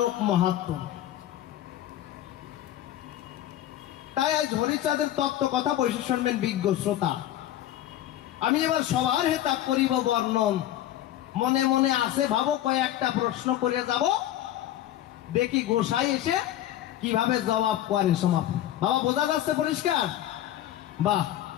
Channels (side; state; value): right; quieter; 12.8 dB